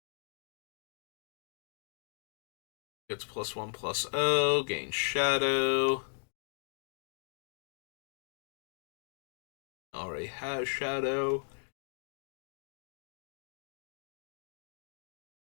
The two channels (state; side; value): silent; right; digital silence